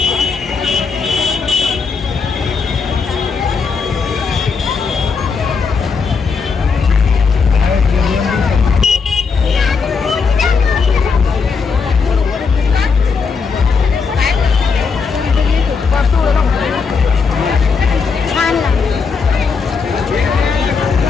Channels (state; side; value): quieter; right; 5.2 dB